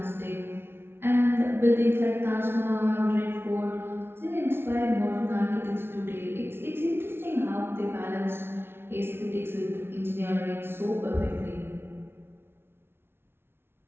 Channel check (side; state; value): left; late; 0.11 ms